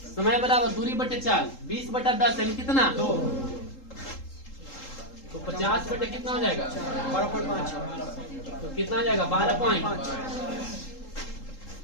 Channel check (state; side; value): late; right; 3.8 ms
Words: समय बराबर दूरी बटे चाल 20/10 यानी कितना? 2। तो 50 बटे कितना हो जाएगा? 12.5। तो कितना आ जाएगा? 12.5।